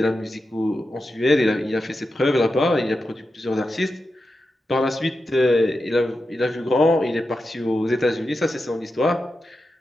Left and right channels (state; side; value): normal; both; correlation 0.90